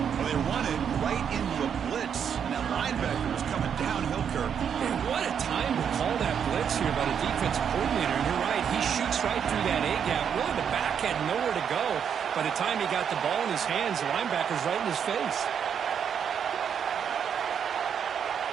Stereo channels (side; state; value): left; quieter; 7.8 dB